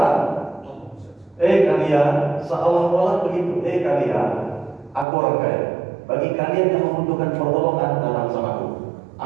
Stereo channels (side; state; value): left; drops out; at 5.1 s